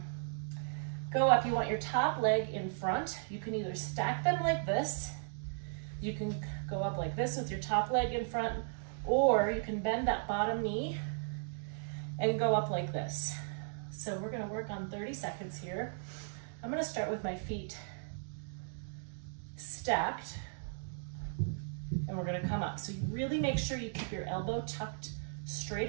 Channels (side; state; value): left; silent; digital silence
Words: go up, you want your top leg in front. You can either stack them like this, you can go up like this with your top leg in front, or you can bend that bottom knee and go up like this. So we're gonna work on 30 seconds here. I'm gonna start with my feet stacked, and we're gonna come up. So you really make sure you keep your elbow tucked